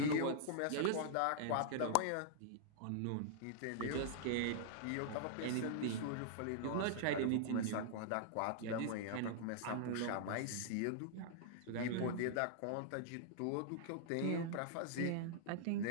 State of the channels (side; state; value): both; different; correlation -0.01